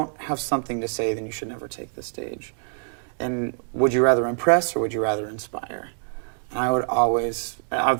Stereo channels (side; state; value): left; silent; digital silence